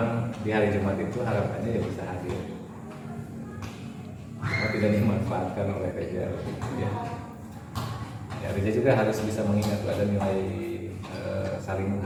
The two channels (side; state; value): both; identical; correlation 1.00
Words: di hari Jumat itu harapannya ya bisa hadir. Karena tidak dimanfaatkan oleh Reja ya. Ya, Reja juga harus bisa mengingat ada nilai saling